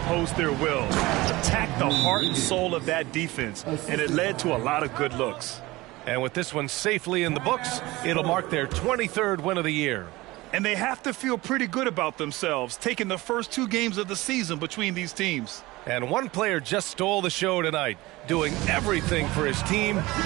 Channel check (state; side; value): quieter; left; 20.2 dB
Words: their will, attack the heart and soul of that defense, and it led to a lot of good looks. And with this one safely in the books, it'll mark their 23rd win of the year. And they have to feel pretty good about themselves, taking the first 2 games of the season between these teams. And one player just stole the show tonight, doing everything for his team.